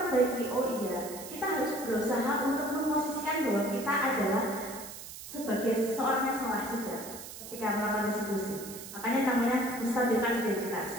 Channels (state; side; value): noise; right; hiss, 12 dB below the sound